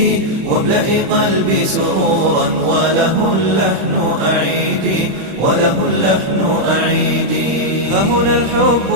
واملئي قلبي سرورا وله اللحن أعيدي، وله اللحن أعيدي. ها هنا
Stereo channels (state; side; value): late; left; 30 ms